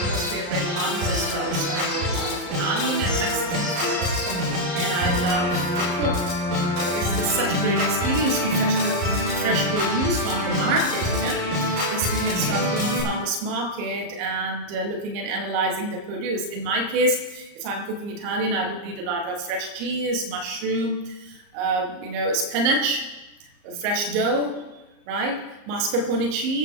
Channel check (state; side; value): late; left; 34 ms